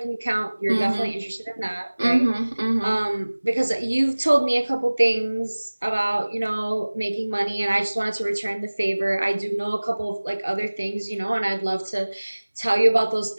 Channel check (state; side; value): inverted; both; correlation -1.00